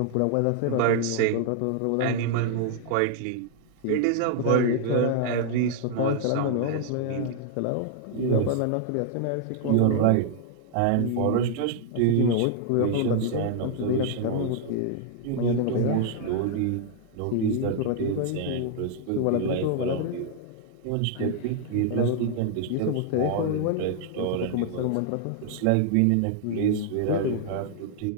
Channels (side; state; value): both; different; correlation -0.01